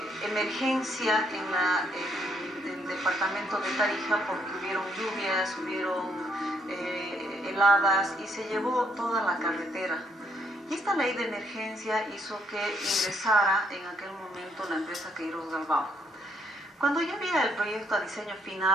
emergencia en el departamento de Tarija, porque hubieron lluvias, hubieron heladas y se llevó toda la carretera. Y esta ley de emergencia hizo que ingresara en aquel momento la empresa Queiroz Galbao. Cuando yo vi el proyecto a diseño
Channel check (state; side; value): normal; both; correlation 0.71